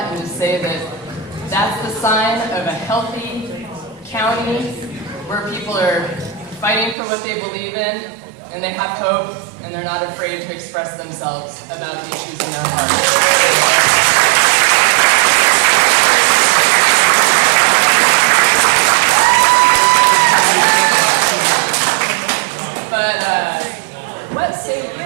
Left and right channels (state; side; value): drops out; left; at 7.0 s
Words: and just say that that's the sign of a healthy county where people are fighting for what they believe in, and they have hope, and they're not afraid to express themselves about the issues in their heart. But what say